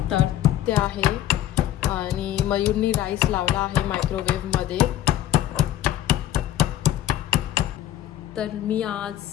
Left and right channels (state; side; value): quieter; right; 12.5 dB